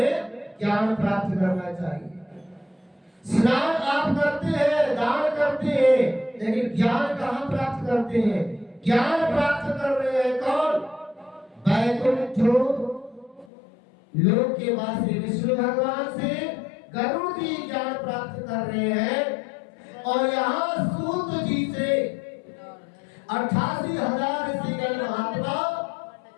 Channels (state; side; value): drops out; right; at 13.5 s